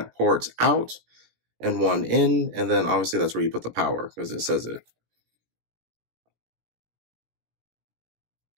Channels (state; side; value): late; left; 17 ms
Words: ports out and 1 in, and then obviously that's where you put the power because it says it.